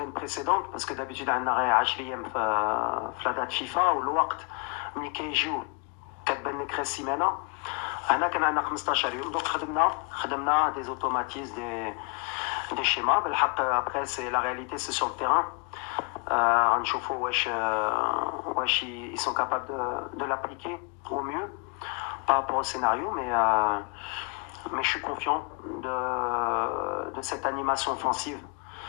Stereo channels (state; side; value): quieter; right; 33.8 dB